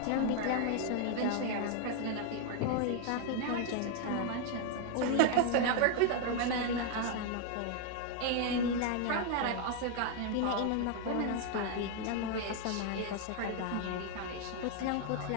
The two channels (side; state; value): both; different; correlation 0.00